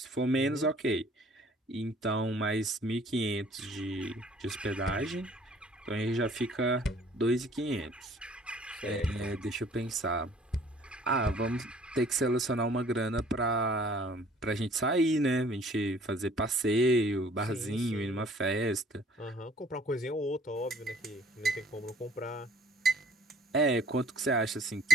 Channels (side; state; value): both; normal; correlation 0.56